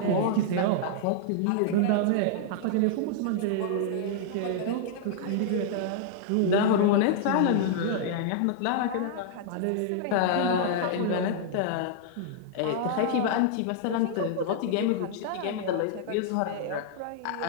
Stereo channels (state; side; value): different; both; correlation -0.01